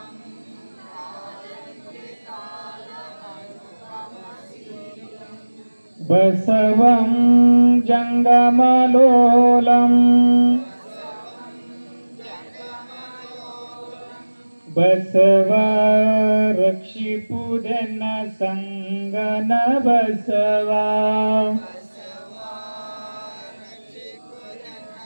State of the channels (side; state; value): both; inverted; correlation -1.00